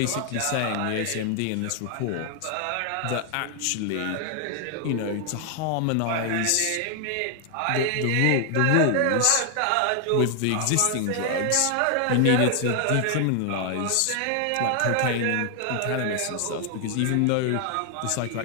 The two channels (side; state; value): both; different; correlation 0.00